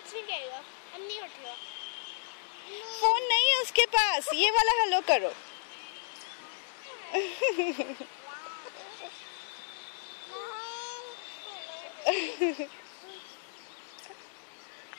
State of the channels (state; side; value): silent; right; digital silence